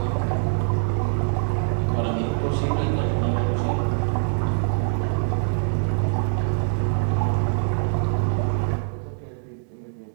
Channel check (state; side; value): silent; left; digital silence